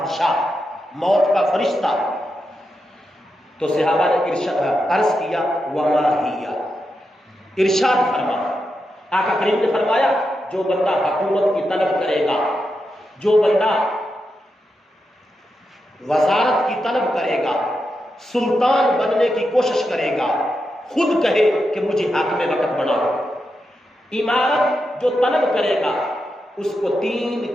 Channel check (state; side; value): normal; both; correlation 0.87